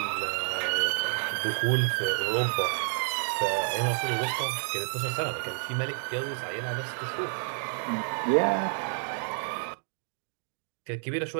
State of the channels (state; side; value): silent; left; digital silence